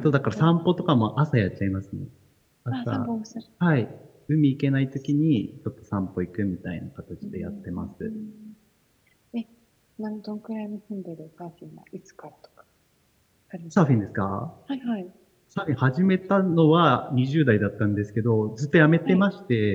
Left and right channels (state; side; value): identical; both; correlation 1.00